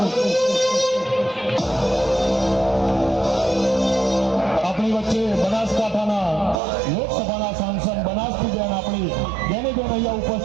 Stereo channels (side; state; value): left; drops out; at 6.6 s